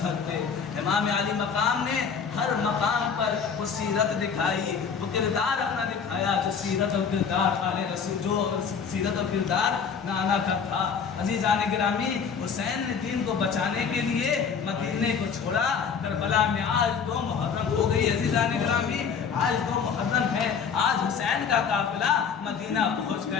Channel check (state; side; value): quieter; right; 6.3 dB